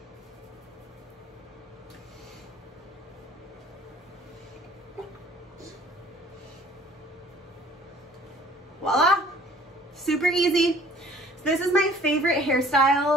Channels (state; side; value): normal; both; correlation 0.53